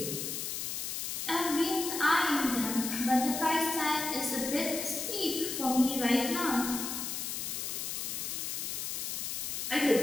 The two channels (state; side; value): noise; left; hiss, 3 dB below the sound